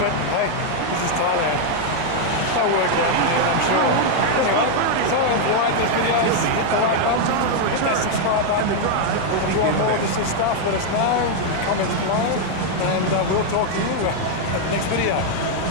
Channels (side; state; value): both; different; correlation 0.00